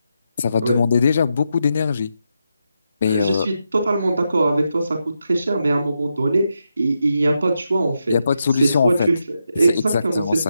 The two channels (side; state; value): both; inverted; correlation -0.85